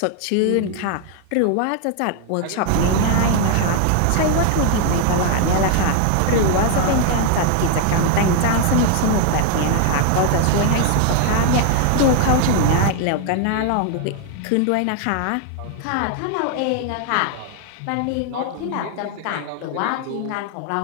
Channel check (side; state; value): both; different; correlation 0.00